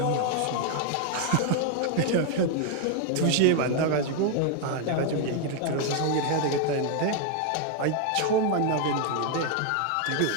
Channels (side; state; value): both; different; correlation 0.00